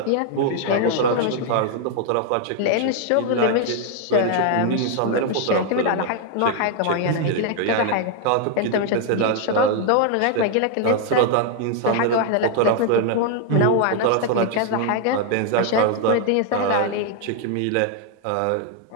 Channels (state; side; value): different; both; correlation 0.00